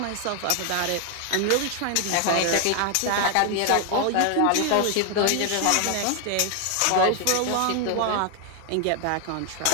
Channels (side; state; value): both; different; correlation 0.00